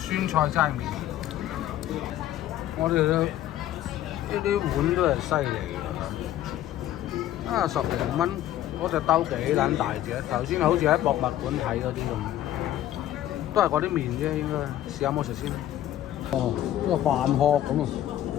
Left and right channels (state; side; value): quieter; right; 12.8 dB